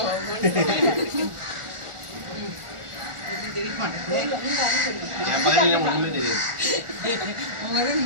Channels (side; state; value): left; late; 1.4 ms